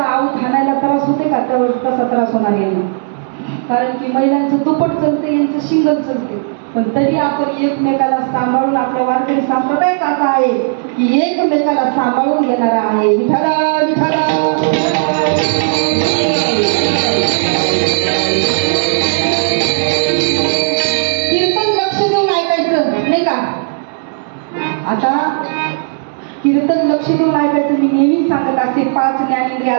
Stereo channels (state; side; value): silent; left; digital silence